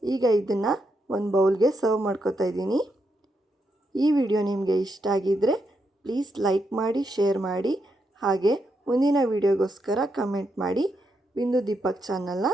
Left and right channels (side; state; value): both; normal; correlation 0.82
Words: ಈಗ ಇದನ್ನು ಒಂದು ಬೌಲ್ಗೆ ಸರ್ವ್ ಮಾಡ್ಕೋತಾ ಇದ್ದೀನಿ. ಈ ವಿಡಿಯೋ ನಿಮಗೆ ಇಷ್ಟ ಆಗಿದ್ದರೆ ಪ್ಲೀಸ್ ಲೈಕ್ ಮಾಡಿ, ಶೇರ್ ಮಾಡಿ, ಹಾಗೆ ಮುಂದಿನ ವಿಡಿಯೋಗೋಸ್ಕರ ಕಮೆಂಟ್ ಮಾಡಿ. ಬಿಂದು ದೀಪಕ್ ಚಾನಲ್ನ